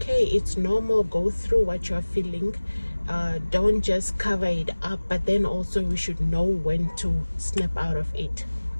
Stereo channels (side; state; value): both; inverted; correlation -1.00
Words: it's normal. Go through what you're feeling. Don't just cover it up, but then also we should know when to snap out of it.